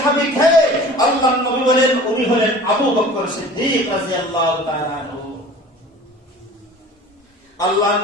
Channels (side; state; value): both; normal; correlation 0.42